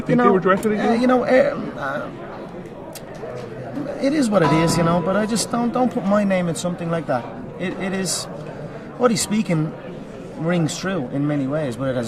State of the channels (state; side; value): identical; both; correlation 1.00